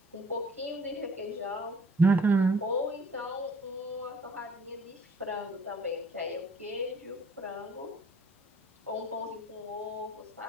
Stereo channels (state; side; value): normal; both; correlation 0.56